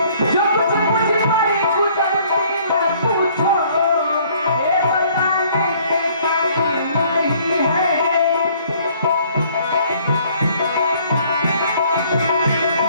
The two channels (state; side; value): inverted; both; correlation -0.59